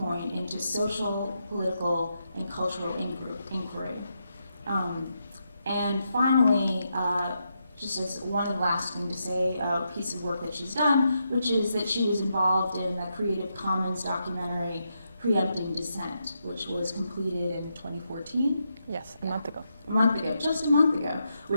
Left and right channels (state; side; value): inverted; both; correlation -0.83